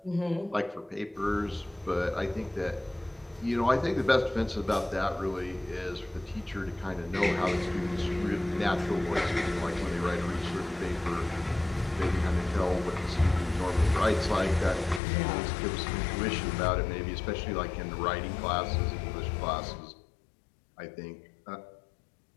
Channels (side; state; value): right; drops out; at 15.0 s